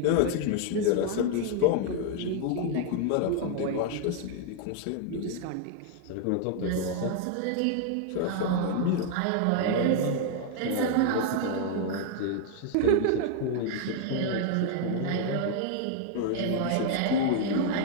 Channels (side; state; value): both; different; correlation 0.00